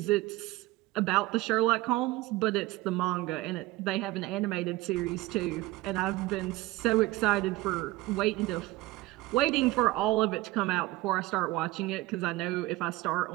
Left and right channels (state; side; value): quieter; left; 19.3 dB